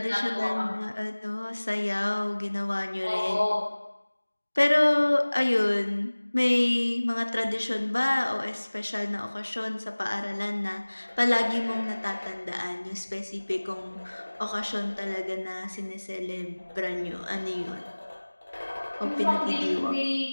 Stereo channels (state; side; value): inverted; both; correlation -1.00